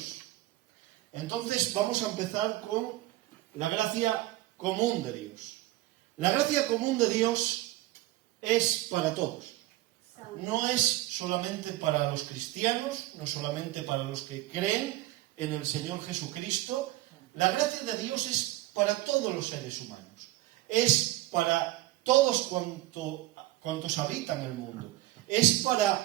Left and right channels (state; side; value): quieter; left; 17.1 dB